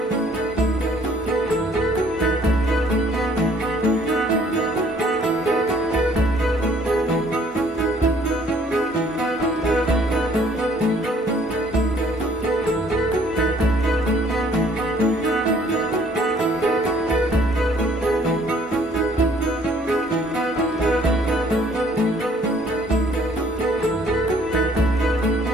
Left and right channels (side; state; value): both; normal; correlation 0.60